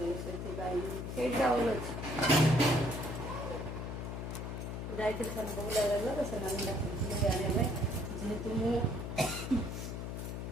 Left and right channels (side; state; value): left; noise; hum, 5 dB below the sound